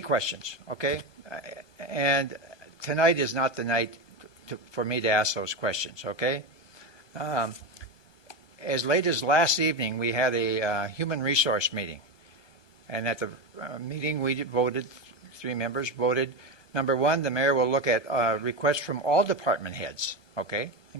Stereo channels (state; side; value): late; right; 1.2 ms